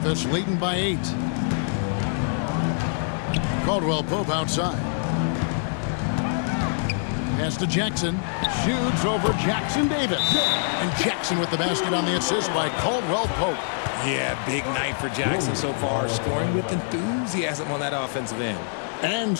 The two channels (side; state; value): right; silent; digital silence